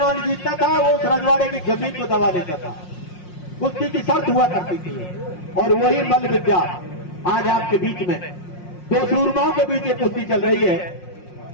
जीतता था वो उस रजवाड़े की जमीन को दबा देता था। कुश्ती की शर्त हुआ करती थी और वही मल्ल विद्या आज आपके बीच में 2 सूरमाओं के बीच ये कुश्ती चल रही है।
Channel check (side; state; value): right; late; 5.6 ms